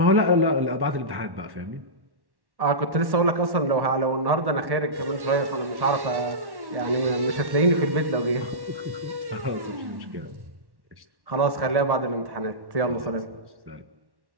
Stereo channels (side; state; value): left; late; 1.1 ms